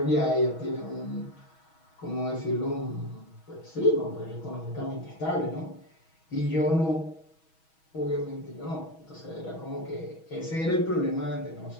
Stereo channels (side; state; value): right; late; 6.2 ms